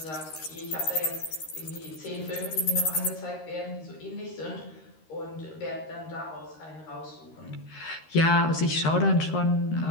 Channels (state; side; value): late; right; 13 ms